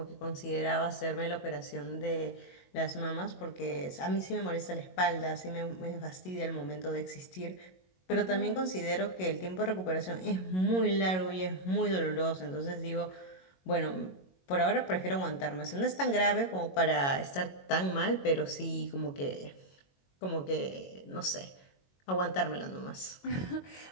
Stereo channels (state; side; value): late; right; 22 ms